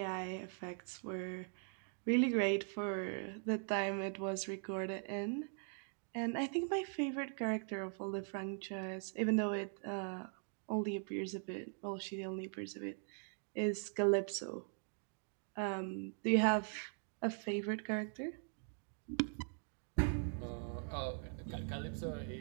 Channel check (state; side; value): silent; left; 50 dB below the other